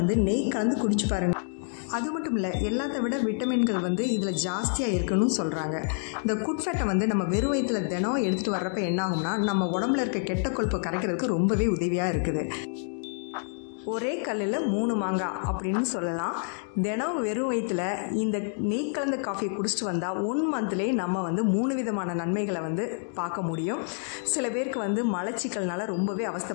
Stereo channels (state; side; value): silent; right; 59 dB below the other